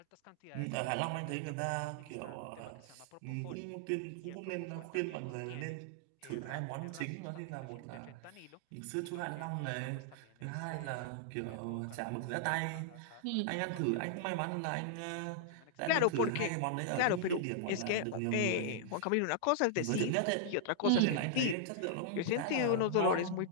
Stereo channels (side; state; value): both; different; correlation -0.01